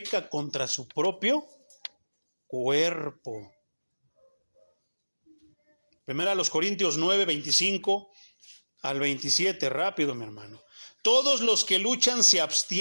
contra su propio cuerpo. Primera a los Corintios 9:25 al 27. Rápido, mi hermano. Todos los que luchan se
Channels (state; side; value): inverted; both; correlation -1.00